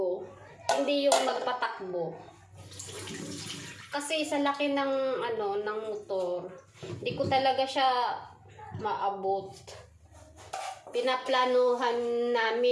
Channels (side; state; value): both; identical; correlation 1.00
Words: hindi yung magpatakbo. Kasi sa laki ng ng motor, hindi ko talaga siya maabot. Pinaplanuhan